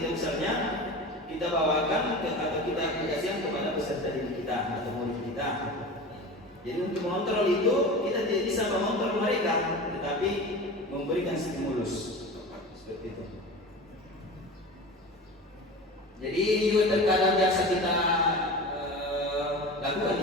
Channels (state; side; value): normal; both; correlation 0.32